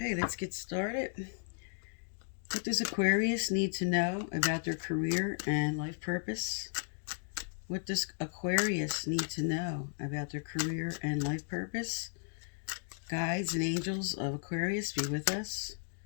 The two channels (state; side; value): silent; right; digital silence